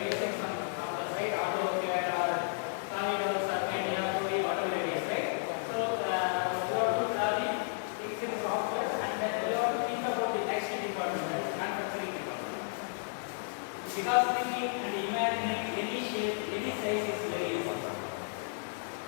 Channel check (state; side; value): silent; right; digital silence